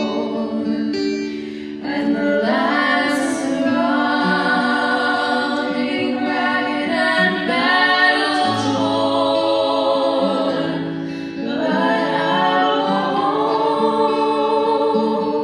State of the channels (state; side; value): identical; both; correlation 1.00